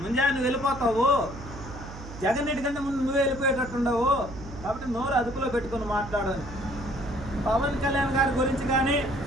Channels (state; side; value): noise; right; hum, 13 dB below the sound